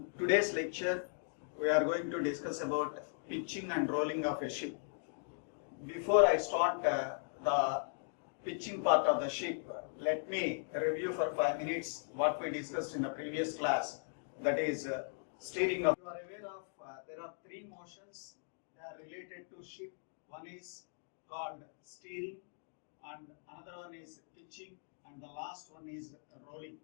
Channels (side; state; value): right; silent; digital silence